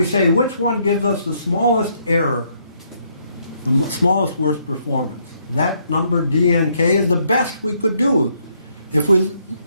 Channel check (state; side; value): inverted; both; correlation -0.71